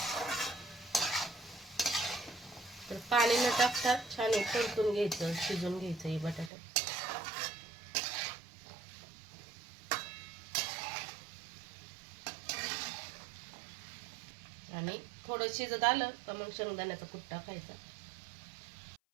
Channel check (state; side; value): drops out; left; at 6.5 s